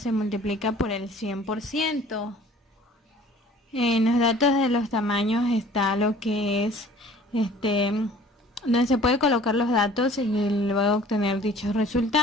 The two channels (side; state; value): both; normal; correlation 0.50